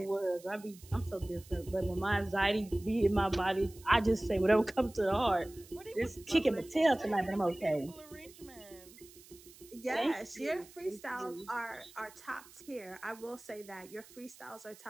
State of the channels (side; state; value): right; noise; hiss, 22 dB below the sound